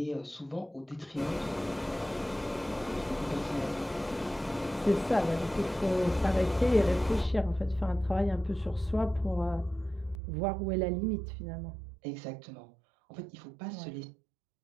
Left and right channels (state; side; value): drops out; left; at 10.2 s